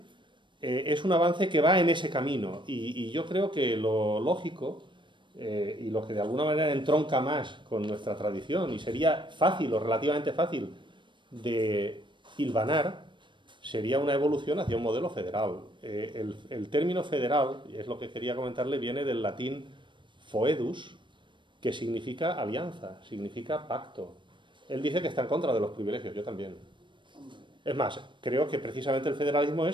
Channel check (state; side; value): late; left; 0.23 ms